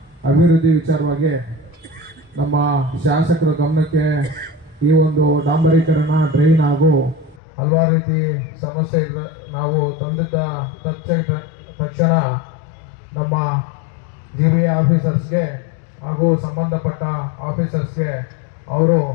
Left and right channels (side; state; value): right; drops out; at 7.4 s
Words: ಅಭಿವೃದ್ಧಿ ವಿಚಾರವಾಗಿ ನಮ್ಮ ಶಾಸಕರ ಗಮನಕ್ಕೆ ಈ ಒಂದು ಡಾಂಬರೀಕರಣ, ಡ್ರೈನ್ ಹಾಗೂ ಹಲವಾರು ರೀತಿ ಸಮಸ್ಯೆ ಇದೆ. ನಾವು ತಂದಿದ್ದ ತಕ್ಷಣ ನಮ್ಮ GBA ಆಫೀಸರ್ಸ್ಗೆ ಹಾಗೂ ಸಂಬಂಧಪಟ್ಟ ಆಫೀಸರ್ಸ್ಗೆ ಅವರು